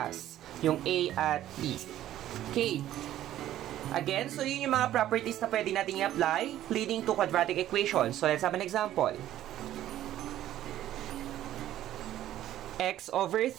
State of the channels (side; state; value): left; quieter; 12.8 dB